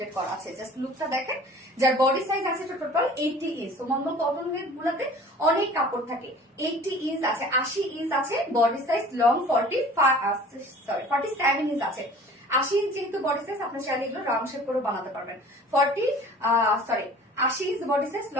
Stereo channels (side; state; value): both; normal; correlation 0.46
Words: করা আছে। জাস্ট লুকটা দেখেন। যার বডি সাইজ আছে টোটাল 80 ইঞ্চ। তো নরমাল কটন ওয়ের গুলাতে অনেক কাপড় থাকে। 80 ইঞ্চ আছে, 80 ইঞ্চ আছে বডি সাইজ, লং 47 ইঞ্চ আছে। 80 ইঞ্চ যেহেতু বডি সাইজ, আপনি চাইলে এগুলো রাউন্ড শেপ করে বানাতে পারবেন। 80 inch body size,